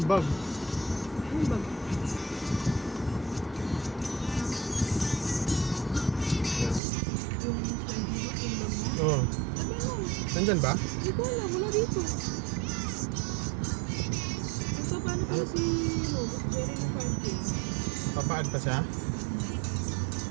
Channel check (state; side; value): drops out; left; at 6.8 s